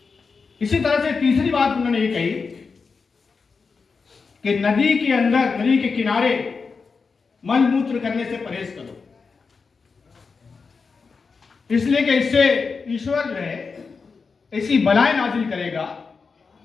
इसी तरह से तीसरी बात उन्होंने ये कही कि नदी के अंदर, नदी के किनारे मल मूत्र करने से परहेज करो, इसलिए कि इससे ईश्वर जो है ऐसी बलाएं नाजिल करेगा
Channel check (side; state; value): right; quieter; 4.9 dB